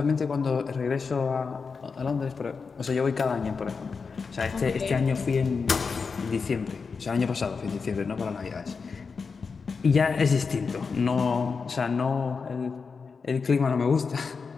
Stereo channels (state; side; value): quieter; right; 5.1 dB